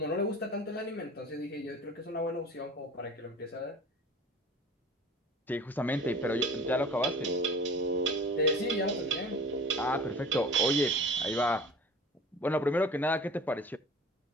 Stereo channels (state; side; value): normal; both; correlation 0.41